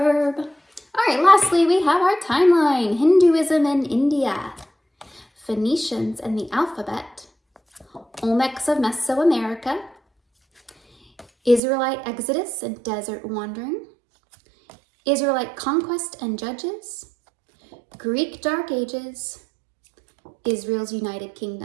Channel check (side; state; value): left; drops out; at 11.6 s